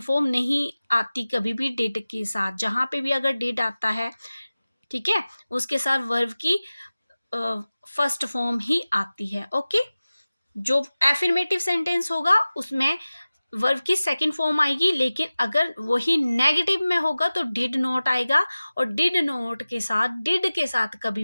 फॉर्म नहीं आती कभी भी डिड के साथ। जहां पे भी अगर डिड आता है, ठीक है, उसके साथ वर्ब की फर्स्ट फॉर्म ही आती है। ओके, जो एफर्मेटिव सेंटेंस होगा उसमें वर्ब की सेकंड फॉर्म आएगी, लेकिन अगर वही नेगेटिव में होगा तो डिड नॉट आएगा, और डिड नॉट के साथ, डिड के साथ कभी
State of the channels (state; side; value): inverted; both; correlation -0.97